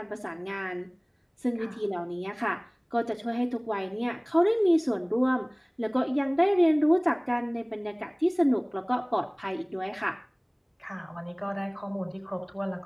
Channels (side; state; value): both; identical; correlation 1.00